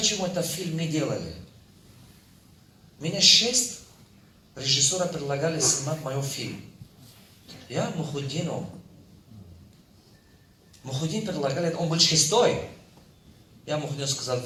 этот фильм не делали? Меня 6 режиссеров предлагали снимать мой фильм. Я Мухуддину. Мухуддин предлагали, он был 6-й. Я Мухуддину сказал,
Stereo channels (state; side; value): identical; both; correlation 1.00